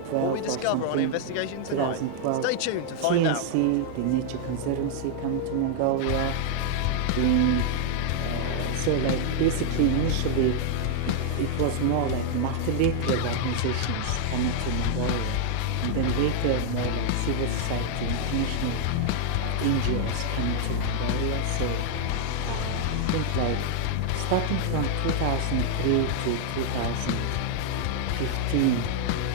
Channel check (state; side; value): different; both; correlation 0.00